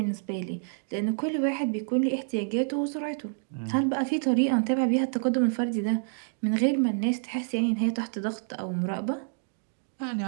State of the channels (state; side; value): silent; left; digital silence